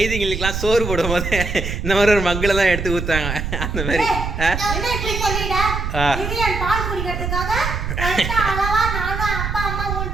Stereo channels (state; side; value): noise; right; rumble, 3 dB below the sound